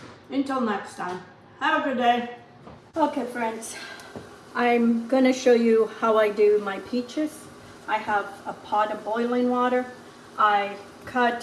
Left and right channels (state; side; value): identical; both; correlation 1.00